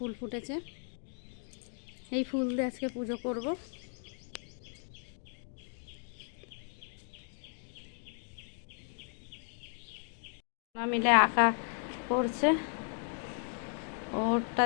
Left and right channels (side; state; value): right; silent; 54 dB below the other